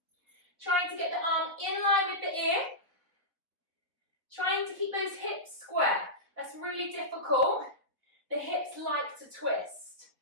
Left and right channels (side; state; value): left; late; 4.0 ms